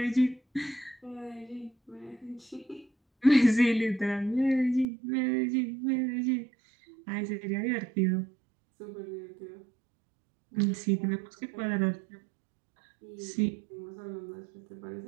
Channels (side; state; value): left; drops out; at 4.9 s